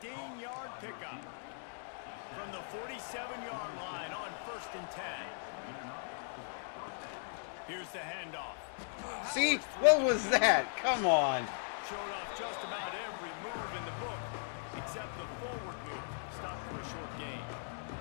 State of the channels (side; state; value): right; silent; digital silence